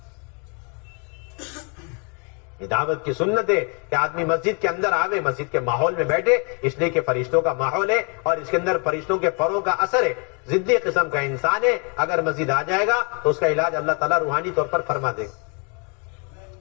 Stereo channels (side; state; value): right; quieter; 36.0 dB